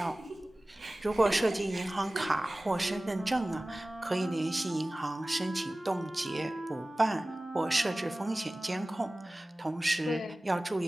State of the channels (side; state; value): both; normal; correlation 0.98